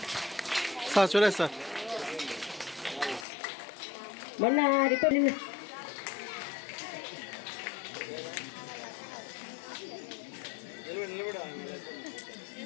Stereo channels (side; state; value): right; drops out; at 3.2 s